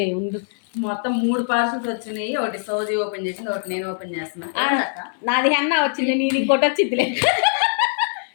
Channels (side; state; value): right; silent; 64 dB below the other